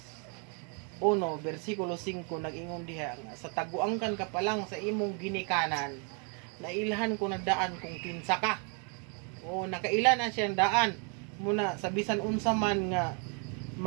1 versikulo 5 nag-ingon diha nga sa taguangkan ka pa lang sa imong ginikanan nailhan ko na daan kung kinsa ka. O nakaila na siyang daan muna sa bisan unsa man nga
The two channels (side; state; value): left; quieter; 38.2 dB